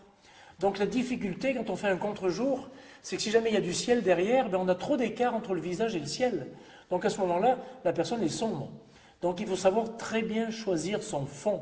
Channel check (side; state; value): both; identical; correlation 1.00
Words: Donc la difficulté quand on fait un contre-jour, c'est que si jamais il y a du ciel derrière, on a trop d'écart entre le visage et le ciel. Donc à ce moment-là, la personne est sombre. Donc il faut savoir très bien choisir son fond.